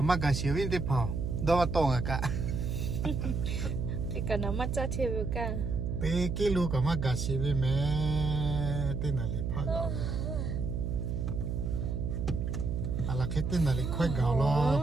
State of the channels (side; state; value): right; noise; hum, 2 dB below the sound